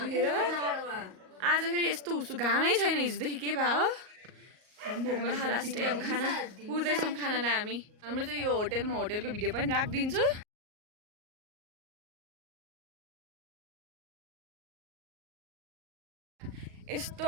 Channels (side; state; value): left; late; 38 ms